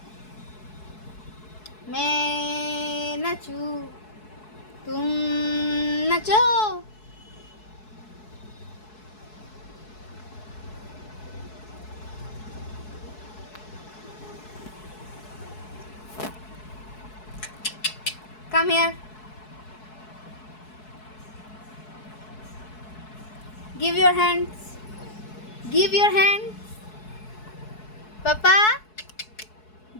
मैं नचूं तुम नचो। Come here. Give your hands. Give your hands. Papa,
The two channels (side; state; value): right; late; 4.7 ms